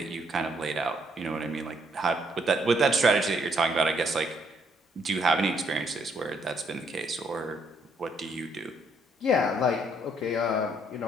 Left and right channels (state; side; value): normal; both; correlation 0.70